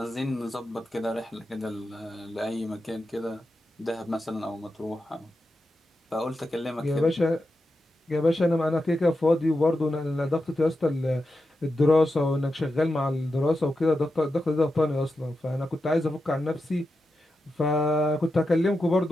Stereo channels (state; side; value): normal; both; correlation 0.89